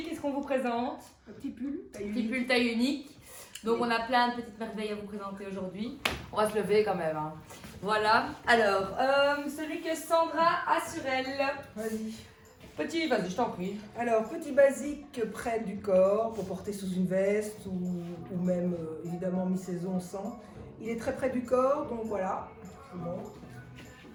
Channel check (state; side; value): identical; both; correlation 1.00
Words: qu'est-ce qu'on vous présente? Un petit pull. Petit pull taille unique. Donc on a plein de petites merveilles à vous présenter aujourd'hui. On va se lever quand même. Hein. Voilà. Alors, celui que Sandra a sur elle. Vas-y. Petit, vas-y, je t'en prie. Alors, petit basique près du corps pour porter sous une veste ou même évidemment mi-saison sans. Il est très près du corps, donc voilà. Bon.